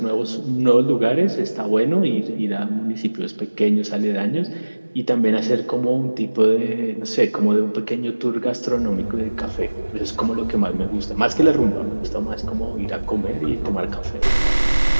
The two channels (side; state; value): both; inverted; correlation -1.00